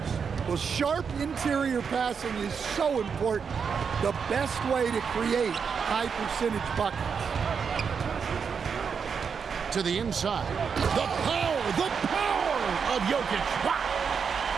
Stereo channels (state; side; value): quieter; left; 6.3 dB